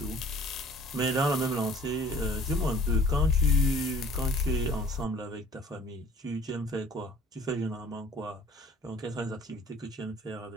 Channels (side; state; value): both; normal; correlation 0.52